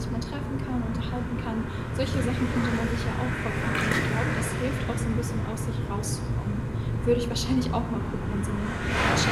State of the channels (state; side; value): identical; both; correlation 1.00